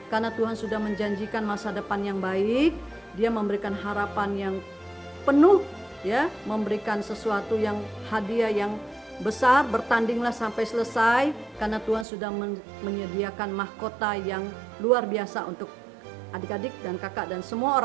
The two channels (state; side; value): drops out; left; at 12.1 s